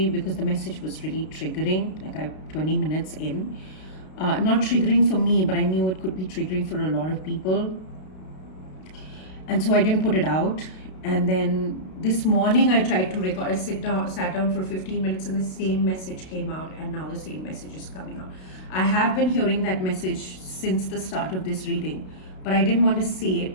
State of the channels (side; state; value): right; late; 32 ms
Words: because the message was really triggering, like 20 minutes in. Not triggering for me, but I knew it could be triggering for a lot of people. And so I didn't put it out. And then this morning I tried to record, I sat down for 15 minutes and the same message came out, and now the same message is coming out. I have been hearing that message since the start of this reading, but I didn't want to say